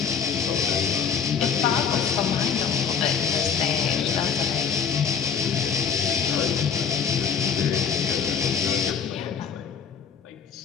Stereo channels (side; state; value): right; quieter; 6.8 dB